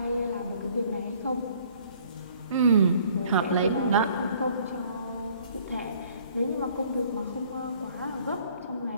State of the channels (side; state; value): both; inverted; correlation -0.57